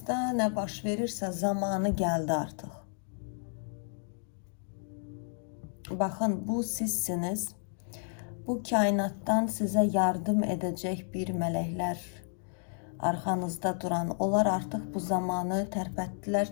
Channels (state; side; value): silent; right; digital silence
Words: ne baş verirse zamanı geldi artık. Bakın bu sizsiniz. Bu kainattan size yardım edecek bir melekler arkanızda duran. Onlar artık bu zamanı